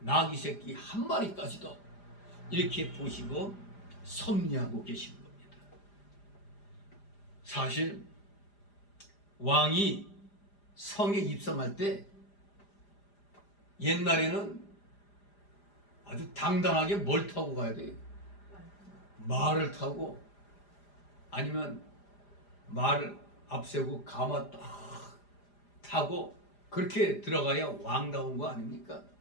새끼 한 마리까지도 이렇게 보시고 섭리하고 계시는 겁니다. 사실 왕이 성에 입성할 때 옛날에는 아주 당당하게 뭘 타고 가야 돼요? 말을 타고, 아니면 말을 앞세우고 가마 딱 타고 그렇게 들어가야 왕다운 거 아닙니까?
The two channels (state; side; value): late; right; 4.9 ms